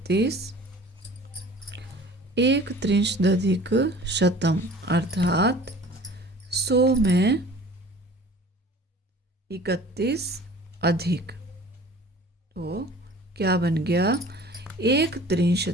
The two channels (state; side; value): normal; both; correlation 0.45